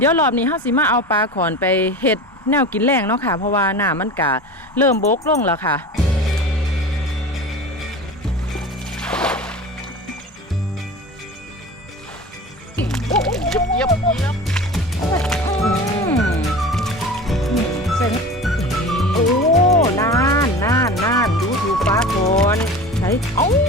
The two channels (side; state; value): both; normal; correlation 0.34